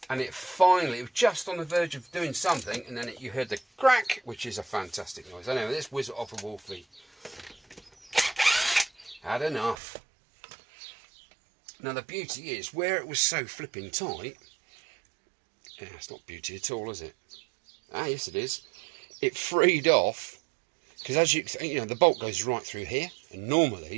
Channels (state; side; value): drops out; left; at 9.8 s